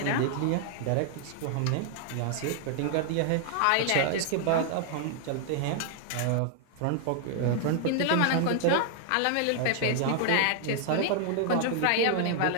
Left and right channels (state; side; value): different; both; correlation 0.00